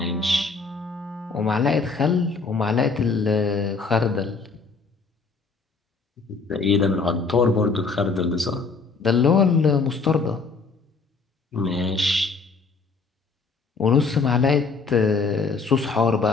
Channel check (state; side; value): quieter; right; 4.5 dB